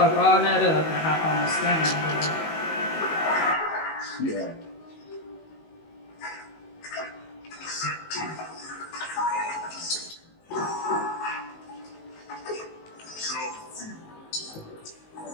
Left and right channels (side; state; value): right; late; 19 ms